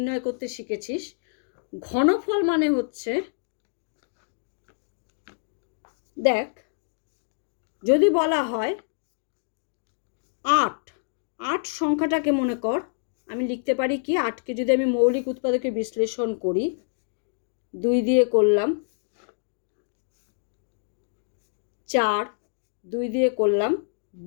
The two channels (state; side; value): silent; right; digital silence